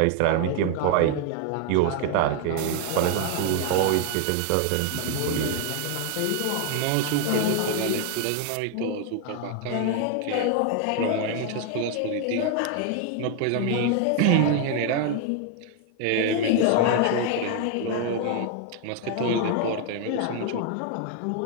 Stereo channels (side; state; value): both; different; correlation 0.00